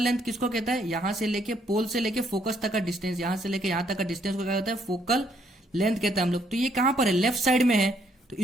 लेंथ किसको कहता है, यहां से लेके पोल से लेके फोकस तक का डिस्टेंस, यहां से लेके यहां तक का डिस्टेंस को क्या कहता है, फोकल लेंथ कहता है हम लोग। तो ये कहां पर है, लेफ्ट साइड में है, तो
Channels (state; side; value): normal; both; correlation 0.70